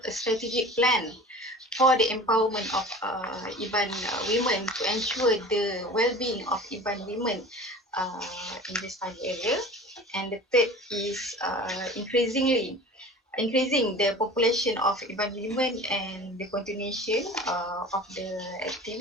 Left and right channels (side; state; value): both; normal; correlation 0.39